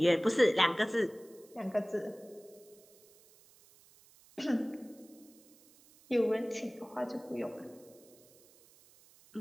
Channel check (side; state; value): right; noise; hiss, 27 dB below the sound